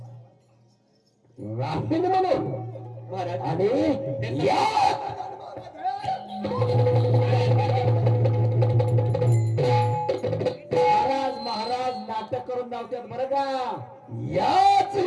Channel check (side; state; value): both; identical; correlation 1.00